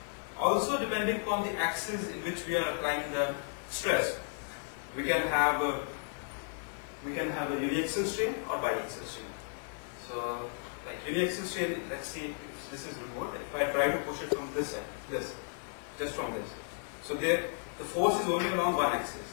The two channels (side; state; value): right; silent; 55 dB below the other